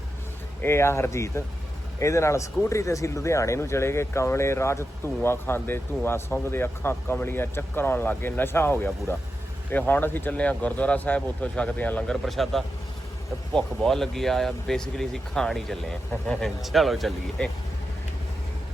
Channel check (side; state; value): both; normal; correlation 0.89